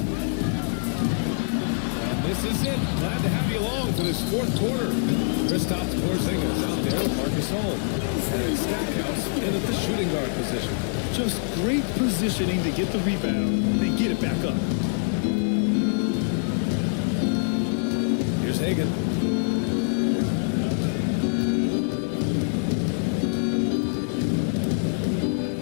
This is it. Glad to have you along for this fourth quarter. Kristaps Porzingis out there with Marcus Gasol. And Stackhouse in at the shooting guard position. Just great positioning to get the rebound, then get it back up. Here's Hagan.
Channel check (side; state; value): right; silent; 62 dB below the other